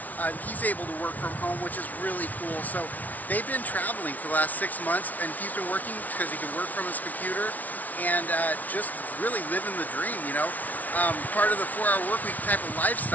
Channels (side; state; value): right; late; 0.075 ms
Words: He's able to work from home, which is really cool. So they've been traveling for the last 6 months, and he's been working because he can work from his computer and just really living the dream, part of the 4-hour work week type of